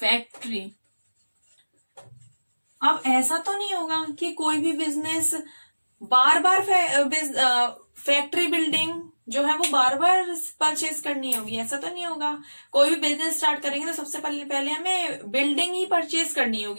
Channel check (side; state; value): both; inverted; correlation -1.00